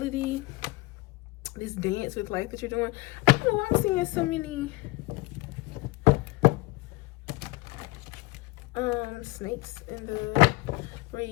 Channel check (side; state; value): right; quieter; 21.8 dB